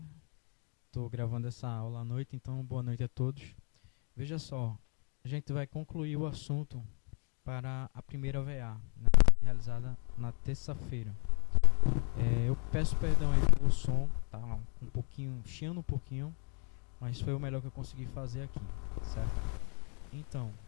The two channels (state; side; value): quieter; right; 37.6 dB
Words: Estou gravando essa aula à noite, então boa noite a todos. Veja só, a gente vai concluir o assunto para a primeira VA, né, realizada na terça-feira. Eu peço perdão aí pelo som, tá um pouquinho, chiando um pouquinho, mas foi o melhor que eu consegui fazer aqui, certo? Então,